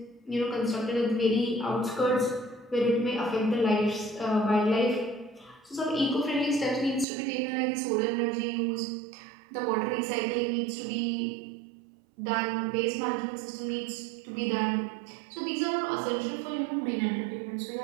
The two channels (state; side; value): drops out; left; at 7.1 s